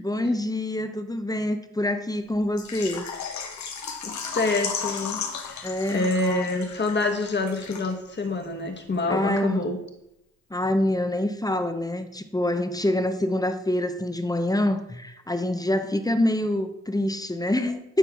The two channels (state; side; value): normal; both; correlation 0.67